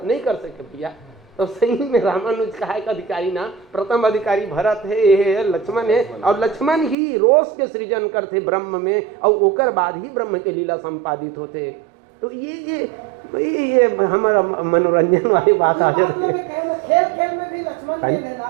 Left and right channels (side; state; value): left; drops out; at 7.0 s